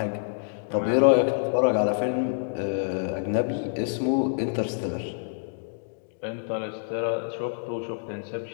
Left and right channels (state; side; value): silent; right; digital silence